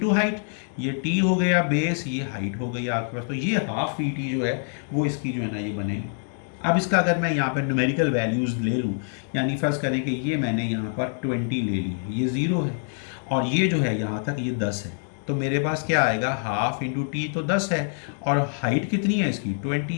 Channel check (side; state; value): right; silent; 59 dB below the other